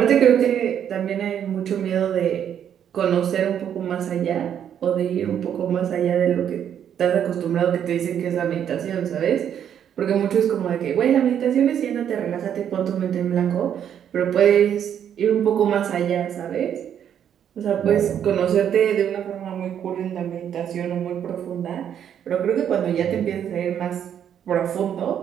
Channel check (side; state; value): left; quieter; 9.2 dB